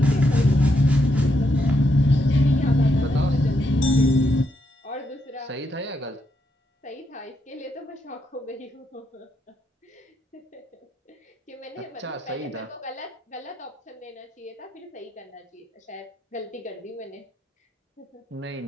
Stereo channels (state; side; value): normal; both; correlation 0.79